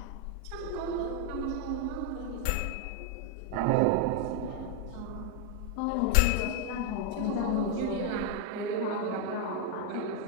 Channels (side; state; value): both; different; correlation 0.00